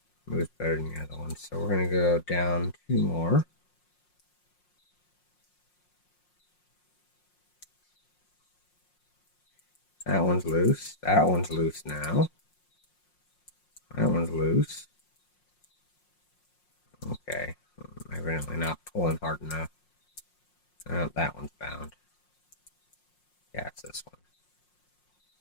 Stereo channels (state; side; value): late; right; 5.6 ms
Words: moves better than the other one. So we're going to go down two more. That one's loose. That one's loose now. That one's loose. Okay. I'm evidently not pulling hard enough. Oh, that one's bound. Yeah, it's this